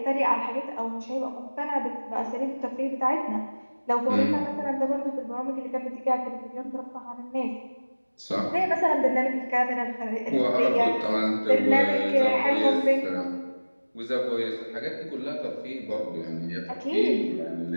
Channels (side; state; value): both; inverted; correlation -1.00